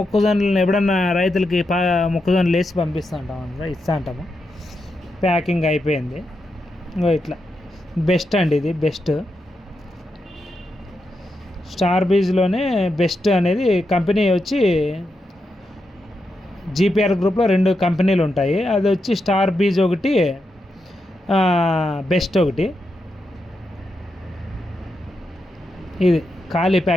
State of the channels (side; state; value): both; normal; correlation 0.85